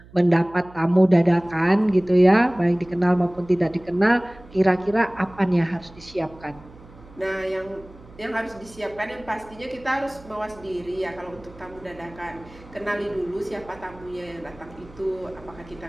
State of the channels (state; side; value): noise; right; hum, 22 dB below the sound